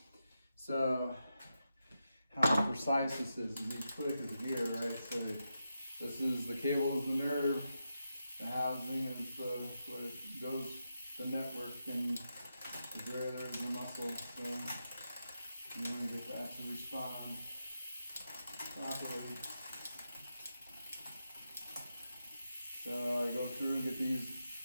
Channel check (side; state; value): both; inverted; correlation -0.87